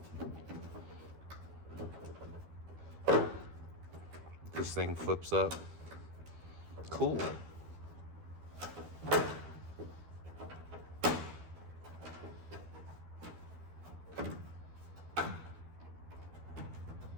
this thing flips up. Cool.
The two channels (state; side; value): late; left; 12 ms